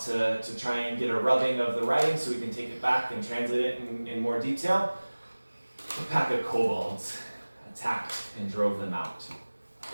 to try and get a rubbing of the writing so we can take it back and translate it in more detail, a pack of kobolds attacked and drove them out.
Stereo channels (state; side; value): inverted; both; correlation -1.00